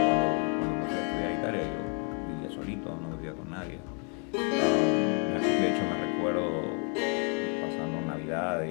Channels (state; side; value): quieter; right; 39.0 dB